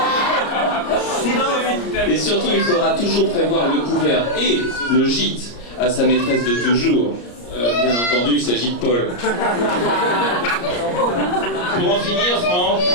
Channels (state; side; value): late; right; 34 ms